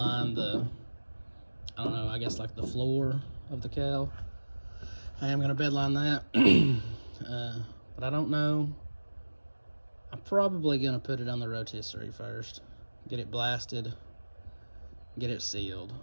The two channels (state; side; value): inverted; both; correlation -1.00